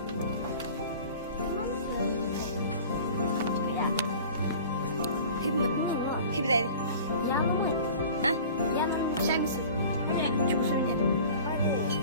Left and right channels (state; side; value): inverted; both; correlation -0.42